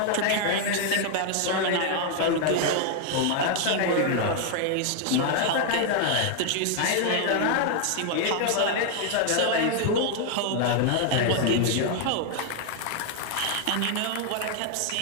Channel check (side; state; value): both; different; correlation 0.00